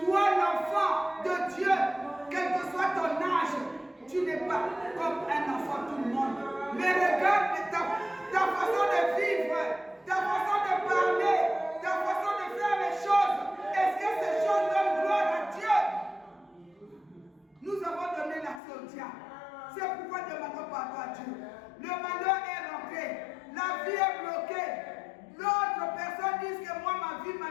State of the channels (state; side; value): drops out; right; at 18.6 s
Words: l'enfant de Dieu, quel que soit ton âge, tu n'es pas comme un enfant, tout le monde. Mais regarde ta façon de vivre, ta façon de parler, ta façon de faire les choses. Est-ce que ces choses donnent gloire à Dieu? Nous avons donné l'accès au diable. C'est pourquoi demandons pardon à Dieu. Le malheur est rentré. La vie est bloquée. L'autre personne dit que moi, ma vie,